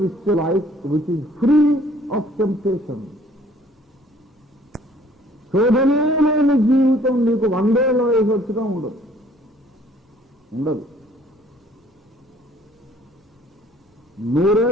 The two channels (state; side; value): normal; both; correlation 0.58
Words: life which is free of temptation. శోధనే లేని జీవితం నీకు 100 ఏళ్ల వయసు వచ్చినా ఉండదు, ఉండదు. 100